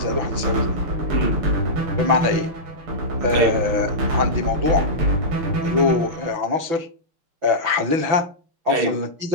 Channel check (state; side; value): late; left; 6.0 ms